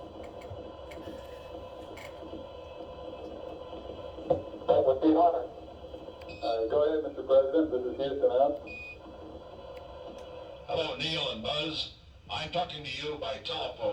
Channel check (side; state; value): both; identical; correlation 1.00